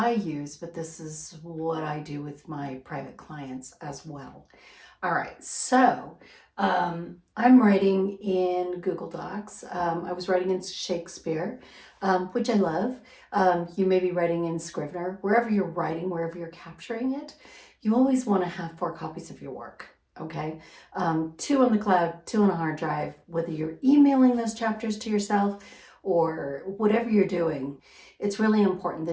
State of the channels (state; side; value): identical; both; correlation 1.00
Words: use, but this is what I do with my private clients as well. All right, so I'm writing in Google Docs. I was writing in Shakespeare, which I love. You may be writing in Scrivener. Wherever you're writing, wherever you're capturing it, you always want to have 4 copies of your work. Okay, 2 on the cloud, 2 on a hard drive, whether you're emailing those chapters to yourself or whatever you're doing. It's really important